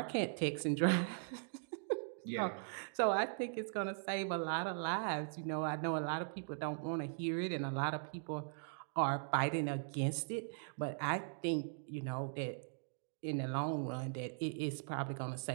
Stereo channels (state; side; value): silent; left; digital silence